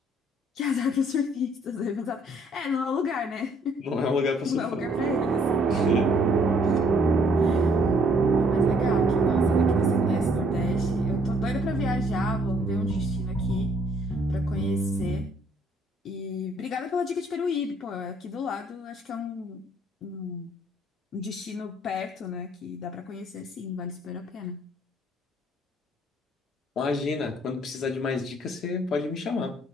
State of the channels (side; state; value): both; normal; correlation 0.64